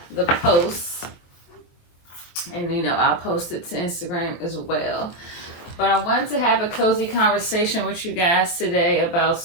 the post, and I'll post it to Instagram as well. But I wanted to have a cozy conversation with you guys today about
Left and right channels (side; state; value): right; late; 23 ms